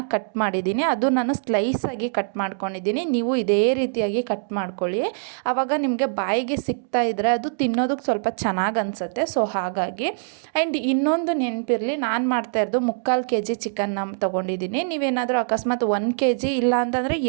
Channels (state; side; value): silent; left; digital silence